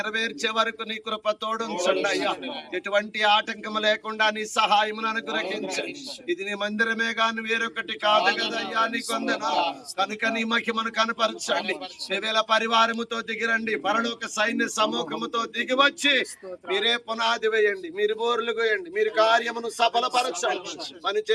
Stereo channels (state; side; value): identical; both; correlation 1.00